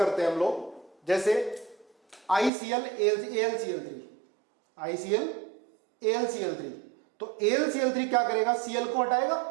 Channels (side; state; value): left; drops out; at 2.5 s